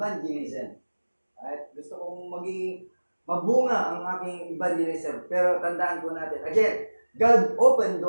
Right? Gusto kong maging mabunga ang aking evangelism. Pero tandaan po natin, again, God opened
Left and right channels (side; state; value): both; inverted; correlation -1.00